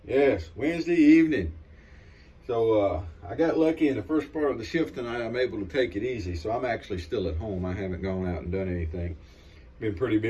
Yes, Wednesday evening. So I got lucky in the first part of the shift tonight. I'm able to take it easy. So I'm actually still at home. I haven't gone out and done anything. Been pretty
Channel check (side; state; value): both; identical; correlation 1.00